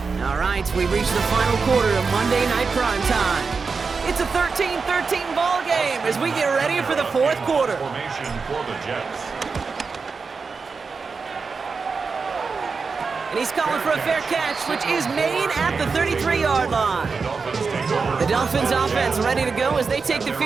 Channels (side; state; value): left; quieter; 4.9 dB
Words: All right, we've reached the final quarter of Monday Night Prime Time. It's a 13-13 ball game as we get ready for the 4th quarter. Formation for the Jets. And he's calling for a fair catch, which is made at the 33-yard line. The Dolphins offense ready to go as they take the